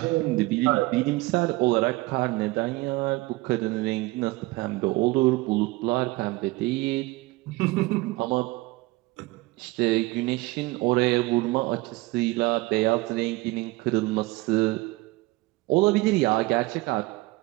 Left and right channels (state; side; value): quieter; left; 21.4 dB